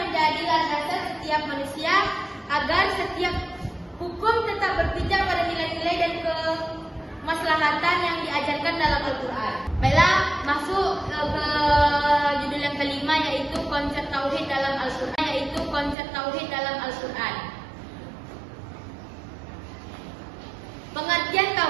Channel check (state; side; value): drops out; left; at 16.0 s